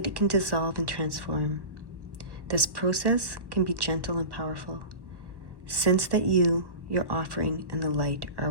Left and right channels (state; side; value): late; left; 1.1 ms